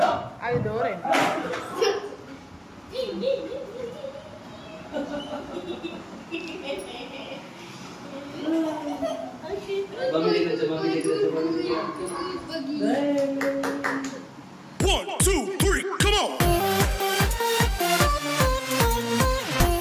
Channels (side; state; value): both; identical; correlation 1.00